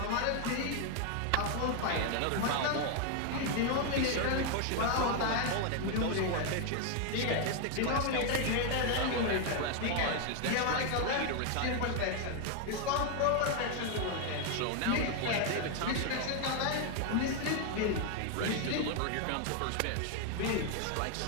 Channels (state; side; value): different; both; correlation 0.01